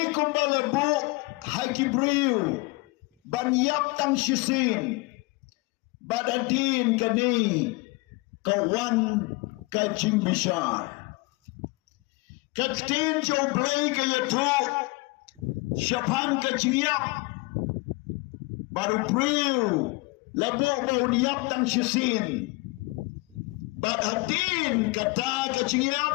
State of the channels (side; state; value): right; quieter; 25.1 dB